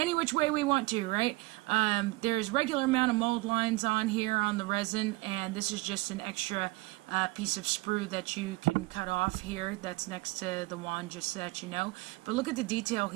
which way we want to, right? There's regular amount of mold lines on here on the resin, and this is just an extra piece of sprue that you can cut off here that's next to the wand, just so that you know. But look at the detail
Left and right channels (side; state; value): left; quieter; 22.6 dB